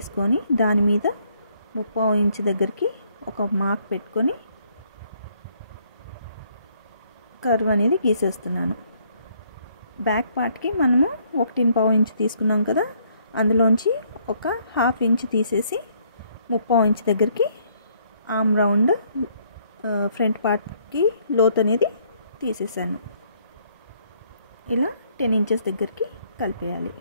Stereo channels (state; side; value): inverted; both; correlation -0.67